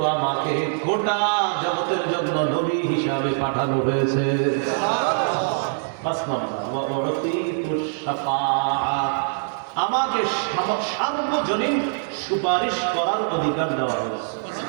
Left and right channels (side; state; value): left; silent; digital silence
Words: আমাকে গোটা জগতের জন্য নবী হিসাবে পাঠানো হয়েছে। ৫ নম্বর, আমাকে সার্বজনীন সুপারিশ করার অধিকার দেওয়া হয়েছে।